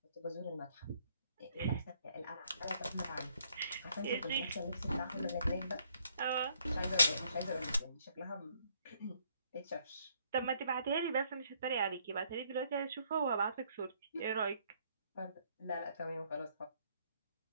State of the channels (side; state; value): both; inverted; correlation -0.68